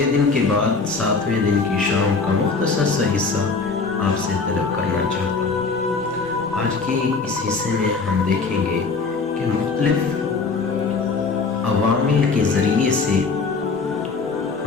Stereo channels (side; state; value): right; quieter; 4.4 dB